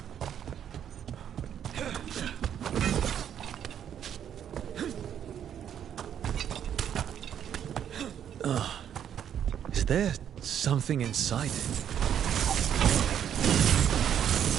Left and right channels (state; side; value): quieter; left; 9.4 dB